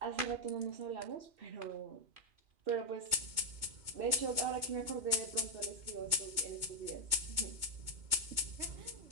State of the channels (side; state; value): left; late; 2.2 ms